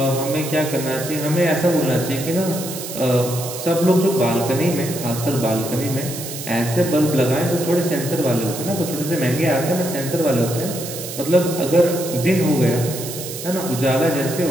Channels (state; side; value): noise; right; hiss, 9 dB below the sound